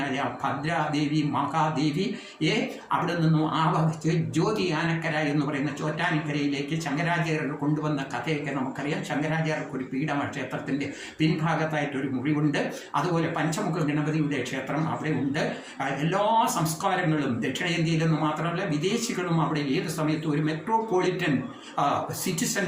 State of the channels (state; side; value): identical; both; correlation 1.00